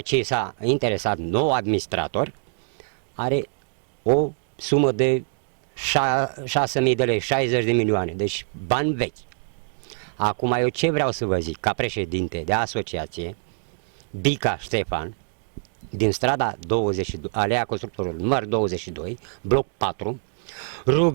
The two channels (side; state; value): left; silent; digital silence